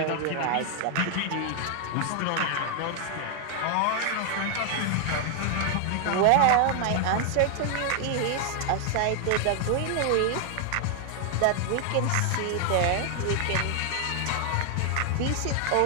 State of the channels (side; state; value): both; different; correlation 0.00